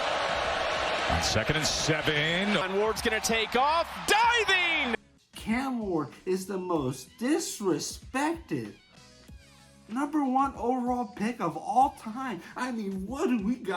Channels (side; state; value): both; identical; correlation 1.00